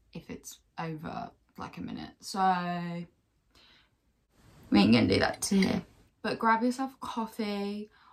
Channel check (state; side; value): identical; both; correlation 1.00